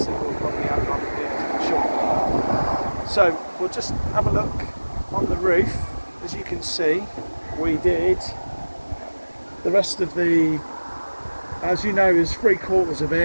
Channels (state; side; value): inverted; both; correlation -1.00